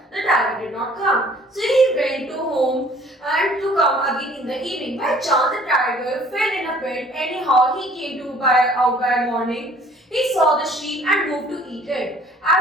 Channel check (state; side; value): normal; both; correlation 0.54